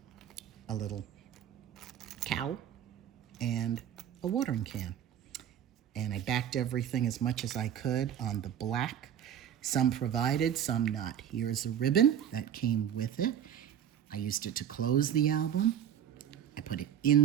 a little cow, and a watering can. And I backed everything as much as I could on the black. Some provided, some not. Here's a ribbon that came with it. I used it to close the album. I put it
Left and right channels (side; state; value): left; quieter; 9.6 dB